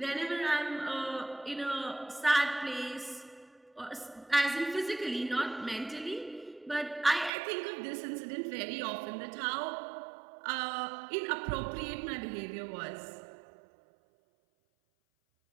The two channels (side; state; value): left; drops out; at 7.3 s